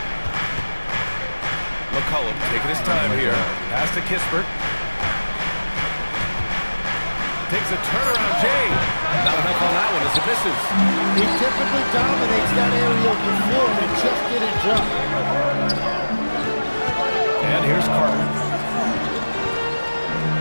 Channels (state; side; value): inverted; both; correlation -1.00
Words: McCollum taking his time here. Pass to Kispert. Takes a turnaround, Jay. Not enough on that one as it misses. He typically dominates that area of the floor, and it just didn't drop. And here's Carter.